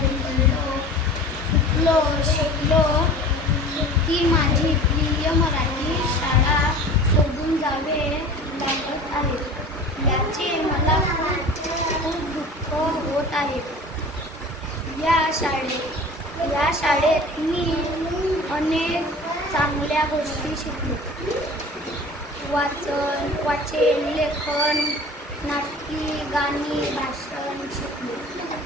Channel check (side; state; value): both; normal; correlation 0.40